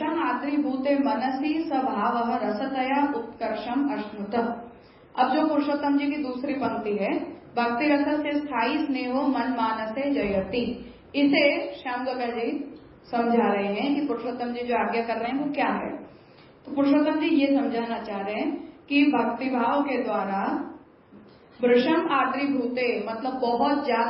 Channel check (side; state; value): both; identical; correlation 1.00